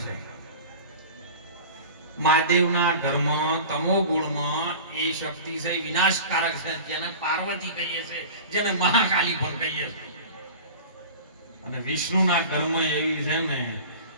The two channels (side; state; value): both; inverted; correlation -0.36